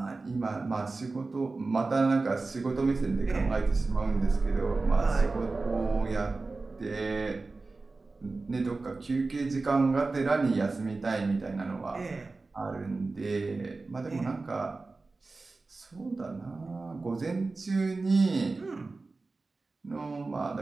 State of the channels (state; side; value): quieter; left; 3.7 dB